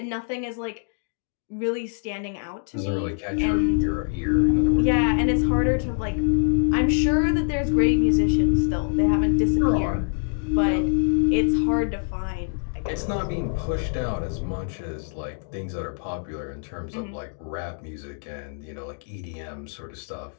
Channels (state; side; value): silent; right; 62 dB below the other